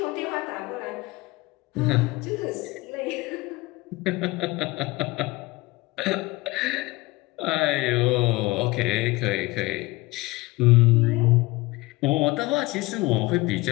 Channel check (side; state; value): right; quieter; 21.2 dB